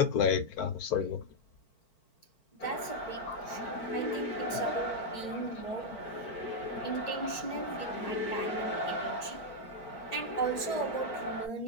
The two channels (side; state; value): right; late; 4.4 ms